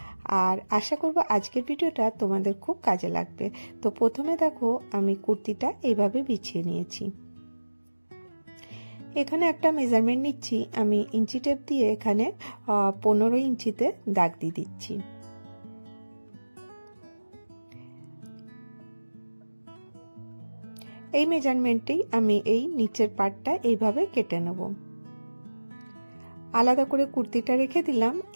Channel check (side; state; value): both; inverted; correlation -1.00